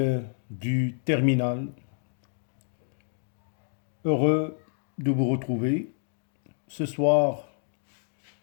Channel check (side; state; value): right; silent; digital silence